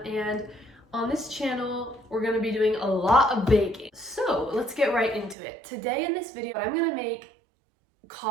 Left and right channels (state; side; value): drops out; left; at 5.4 s